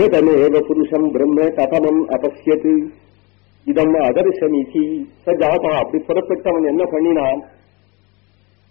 புருஷம் பிரம்ம ததமம் அபஸ்யத் இதம் அதர்சமிதி. சஜாதா அப்படி புறப்பட்டவன் என்ன பண்ணினான்,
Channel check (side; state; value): right; quieter; 27.2 dB